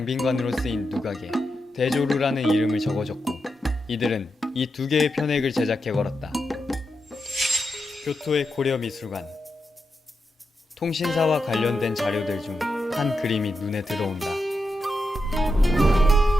쓰인 누각에 대조루라는 이름을 적어줬고 이들은 이 두 개의 편액을 제작해 걸었다. 교토의 고려미술관. 통신사와 관련된 자료들 중 한 그림이 눈에 들어온다.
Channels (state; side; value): normal; both; correlation 0.87